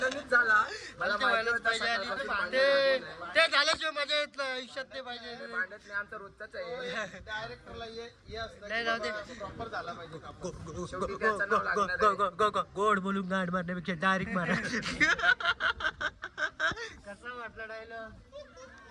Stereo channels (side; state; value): both; identical; correlation 1.00